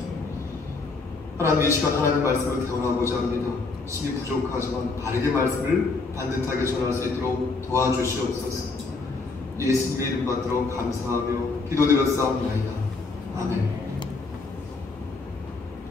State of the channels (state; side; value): quieter; right; 3.9 dB